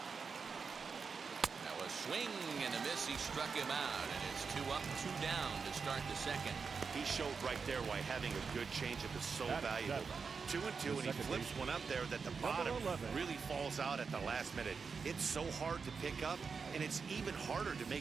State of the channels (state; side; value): quieter; left; 5.3 dB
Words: Now a swing and a miss. He struck him out, and it's 2 up, 2 down to start the second. He showed right there why having a good changeup is so valuable. 2-2, and he flips one up there that the bottom really falls out at the last minute. It's so hard to pick up, and it's even harder to make